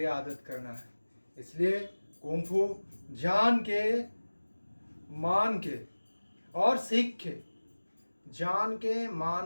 आदत करना है। इसलिए कुंग फू जान के, मान के और सीख के, जान के,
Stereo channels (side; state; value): both; inverted; correlation -1.00